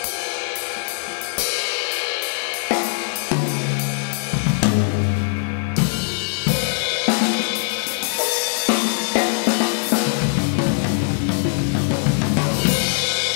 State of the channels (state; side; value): silent; right; 62 dB below the other